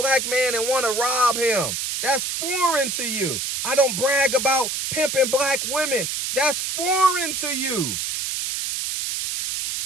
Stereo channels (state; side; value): noise; right; hiss, 2 dB below the sound